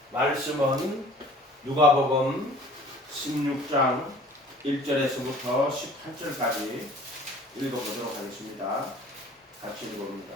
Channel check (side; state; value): both; normal; correlation 0.49